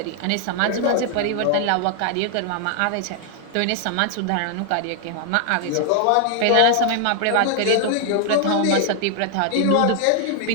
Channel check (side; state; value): both; different; correlation 0.00